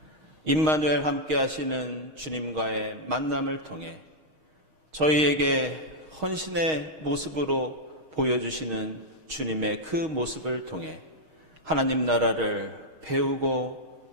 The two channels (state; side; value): late; left; 6.4 ms